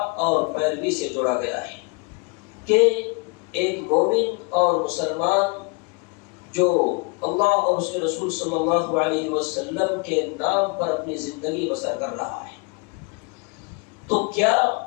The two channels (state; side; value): quieter; right; 31.9 dB